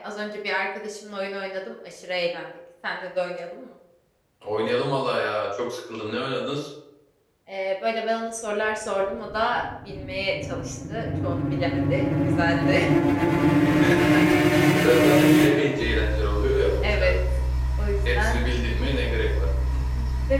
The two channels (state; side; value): identical; both; correlation 1.00